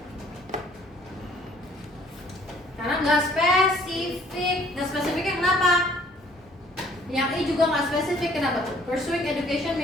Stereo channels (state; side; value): normal; both; correlation 0.59